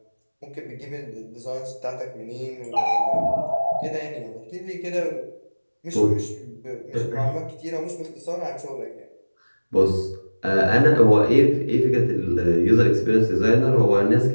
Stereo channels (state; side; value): inverted; both; correlation -1.00